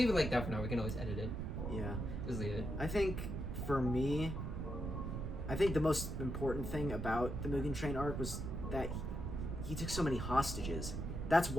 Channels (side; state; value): right; noise; rumble, 3 dB below the sound